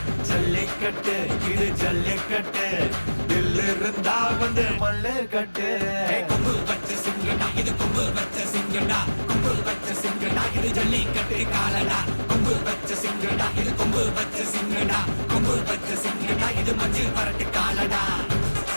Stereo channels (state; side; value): inverted; both; correlation -1.00